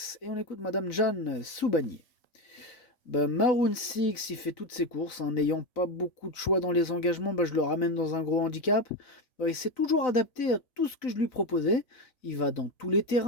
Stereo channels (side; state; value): right; late; 3.9 ms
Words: et on écoute Madame Jeanne Soubanier. Maroon 6, il fait toutes ses courses, n'ayant pas beaucoup de choix dans les engagements, je le ramène dans un gros handicap. Il s'est toujours adapté à tout ce que je lui proposais. Il va dans tous les